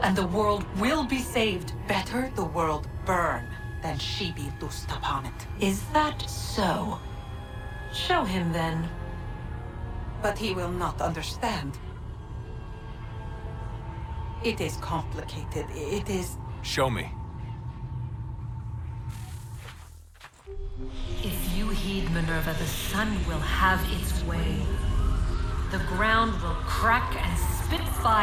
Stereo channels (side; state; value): both; identical; correlation 1.00